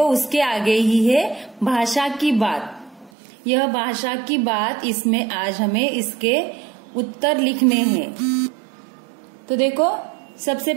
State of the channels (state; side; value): drops out; left; at 3.1 s